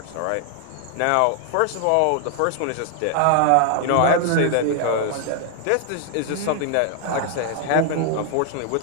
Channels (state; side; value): different; both; correlation 0.00